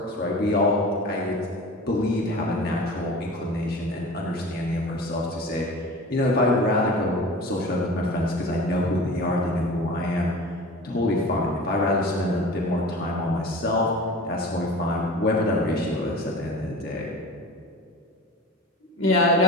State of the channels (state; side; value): normal; both; correlation 0.37